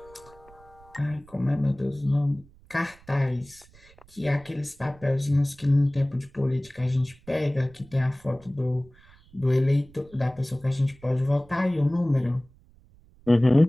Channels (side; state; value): right; noise; rumble, 26 dB below the sound